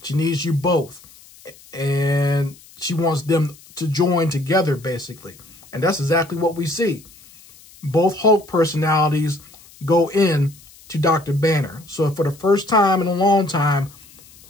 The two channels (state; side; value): noise; left; hiss, 24 dB below the sound